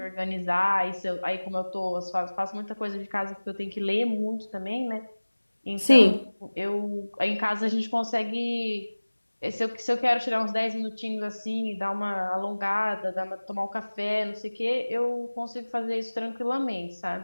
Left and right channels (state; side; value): inverted; both; correlation -1.00